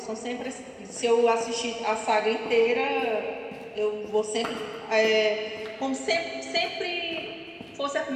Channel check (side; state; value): both; identical; correlation 1.00